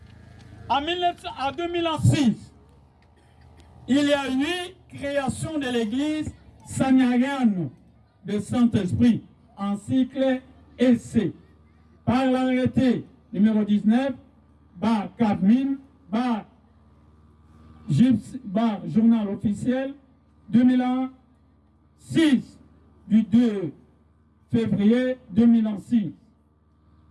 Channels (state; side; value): identical; both; correlation 1.00